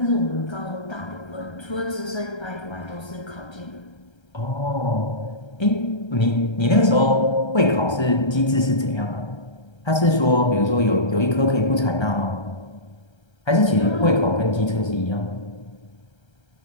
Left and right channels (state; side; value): late; right; 1.3 ms